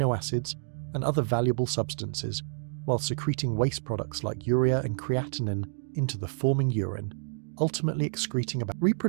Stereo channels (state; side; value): silent; left; digital silence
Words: acids, and other valuable substances, while secreting waste products like urea and creatinine into the forming urine, ultimately excreting about